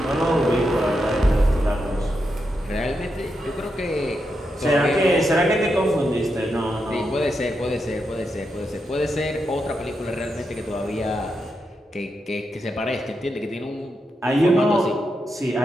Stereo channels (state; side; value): normal; both; correlation 0.85